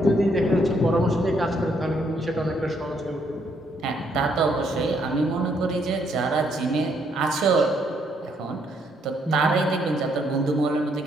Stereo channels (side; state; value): both; normal; correlation 0.71